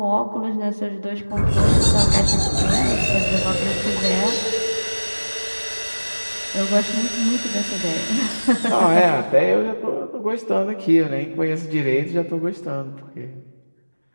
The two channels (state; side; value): inverted; both; correlation -1.00